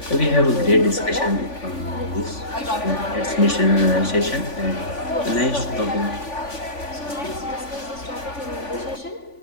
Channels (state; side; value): late; right; 3.5 ms